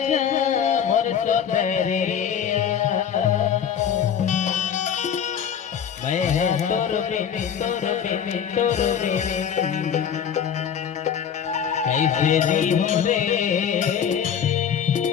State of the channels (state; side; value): quieter; right; 8.2 dB